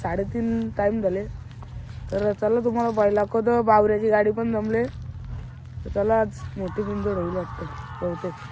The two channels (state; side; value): identical; both; correlation 1.00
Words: टाईम झाले. तर चला तुम्हाला पाहिलं दाखवतो. बावऱ्याची गाडी पण जमले. तर चला आज मोठी बिंदोड होईल वाटतं. बहुतेक